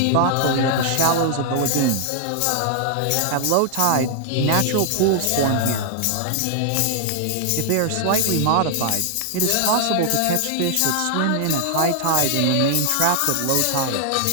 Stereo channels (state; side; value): different; both; correlation 0.00